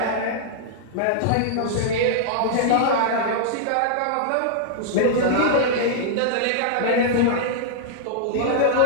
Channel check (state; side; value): different; both; correlation -0.01